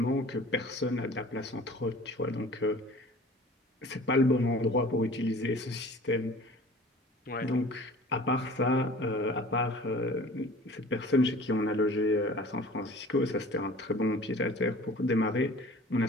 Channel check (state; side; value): normal; both; correlation 0.45